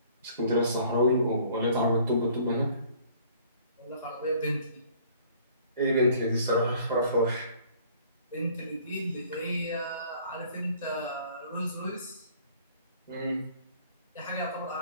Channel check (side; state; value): both; inverted; correlation -0.56